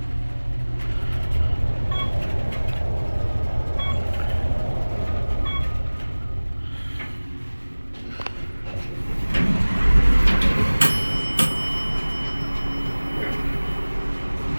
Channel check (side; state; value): both; inverted; correlation -1.00